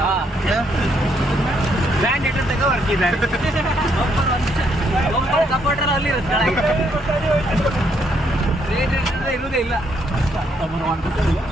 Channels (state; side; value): normal; both; correlation 0.73